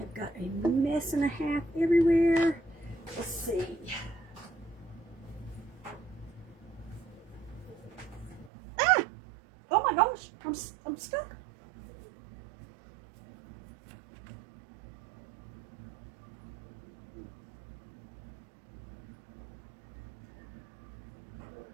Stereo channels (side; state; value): left; drops out; at 8.5 s